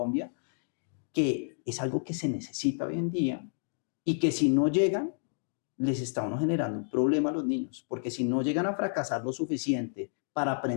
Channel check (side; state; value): right; silent; digital silence